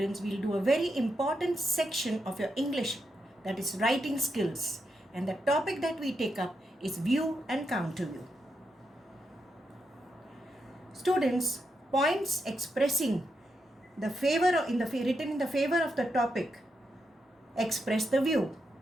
will do a very important section of your English, that is writing skills, and the topic that we take up is view and counter view. Students, points expressing the favor written in the favor of the topic express the view,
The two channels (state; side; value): normal; both; correlation 0.84